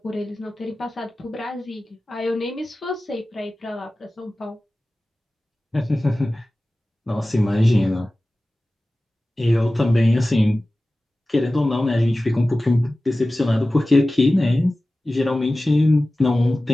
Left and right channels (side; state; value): both; normal; correlation 0.96